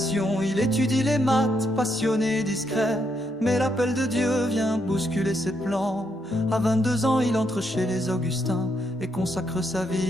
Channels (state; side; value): normal; both; correlation 0.78